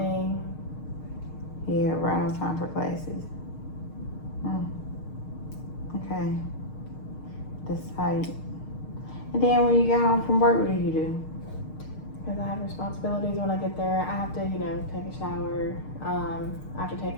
Yeah, right on time for classes. Okay. That's tight. And then when you get home from work, what do you do? Because I have responsibilities when I get there. I have to, take a shower. I have to take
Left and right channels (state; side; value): late; right; 6.5 ms